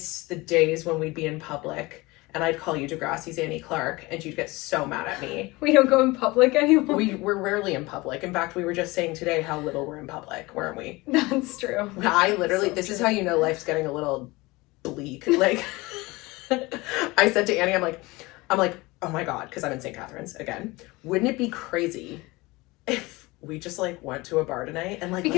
the days when we'd be in public, and I'd call you Degrassi's Annie Clark, and you'd get so mad at me. We don't go in public anymore. We're rarely in public. In fact, we were just saying today how little we're in public, weren't we? That's true. I literally, this is how you know life's getting a little bleak. Like, I said to Annie, I'm like, oh my God, because I'm in St. Catharines again. Wouldn't it be crazy if we just like went to a bar tonight and like,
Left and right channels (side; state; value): right; quieter; 22.3 dB